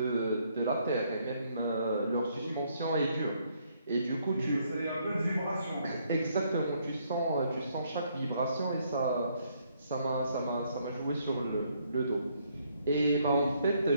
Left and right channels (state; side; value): inverted; both; correlation -0.70